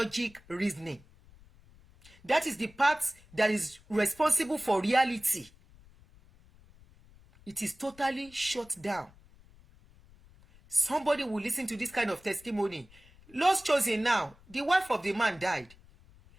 reasoning. That is the part that is responsible for reality. It is totally shut down. Somebody will listen to this kind of testimony. Lost chosen now, the wife of the man died.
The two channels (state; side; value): noise; left; rumble, 25 dB below the sound